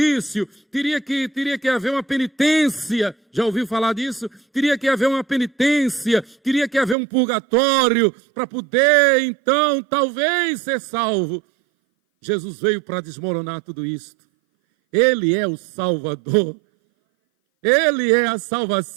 teria que haver uma penitência. Já ouviu falar disso? Teria que haver uma penitência, teria que haver um purgatório para poder, então, talvez ser salvo. Jesus veio para desmoronar tudo isto. Ele é o Salvador. Ele é a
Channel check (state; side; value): drops out; left; at 7.0 s